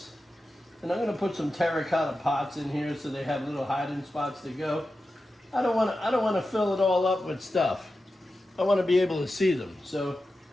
And I'm going to put some terracotta pots in here so they have little hiding spots to go. I don't want to fill it all up with stuff. I want to be able to see them. So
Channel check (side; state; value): both; normal; correlation 0.92